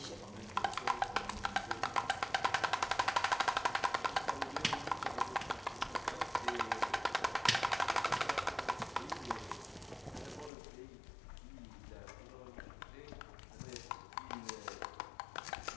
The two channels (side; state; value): right; drops out; at 10.5 s